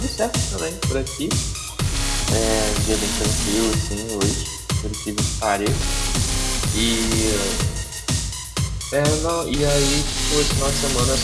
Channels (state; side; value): identical; both; correlation 1.00